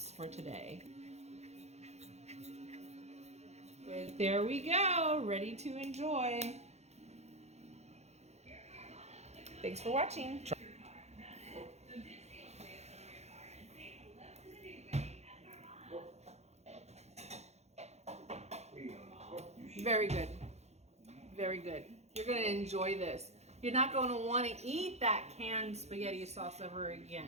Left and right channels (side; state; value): left; late; 0.32 ms